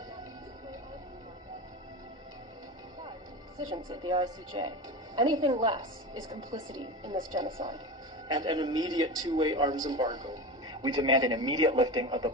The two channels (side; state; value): both; normal; correlation 0.27